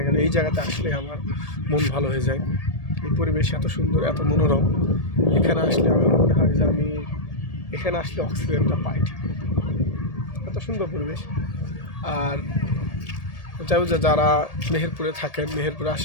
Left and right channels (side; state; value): right; late; 1.8 ms